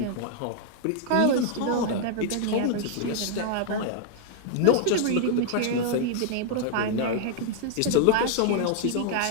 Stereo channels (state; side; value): different; both; correlation 0.00